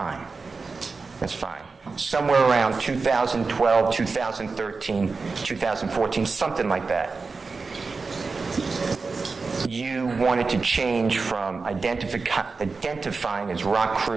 That's fine. Somewhere around 2012, 2013, 2014, something like that. You wanted to change from identifying as Rock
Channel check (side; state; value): left; quieter; 4.3 dB